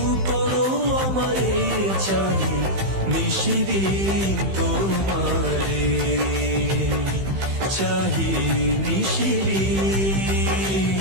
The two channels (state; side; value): late; left; 15 ms